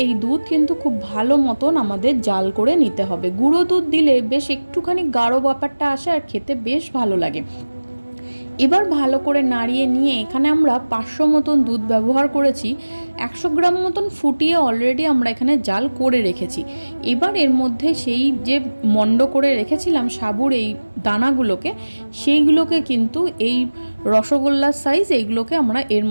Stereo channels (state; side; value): inverted; both; correlation -1.00